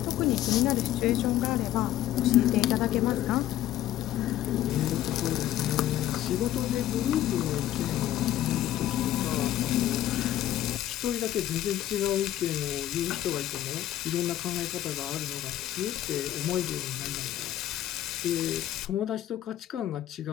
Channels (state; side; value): quieter; right; 13.0 dB